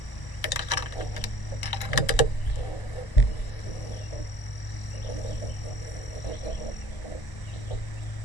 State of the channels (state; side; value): late; right; 1.0 ms